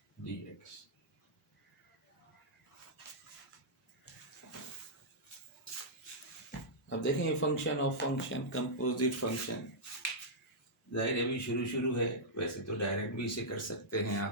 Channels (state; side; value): normal; both; correlation -0.11